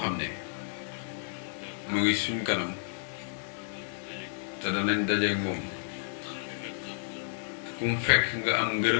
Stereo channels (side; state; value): right; silent; digital silence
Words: ne mu ngi suñ kanam te danañ dajeek moom kum fekk nga am